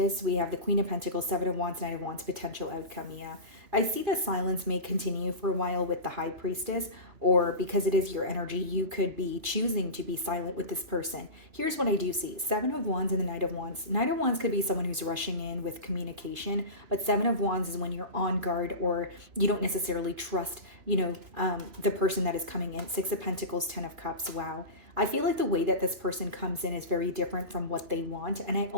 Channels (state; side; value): late; left; 3.0 ms